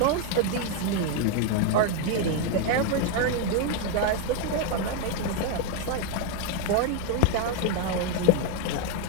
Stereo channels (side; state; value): both; different; correlation 0.01